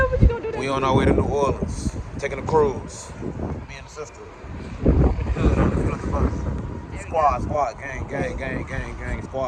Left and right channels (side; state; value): both; identical; correlation 1.00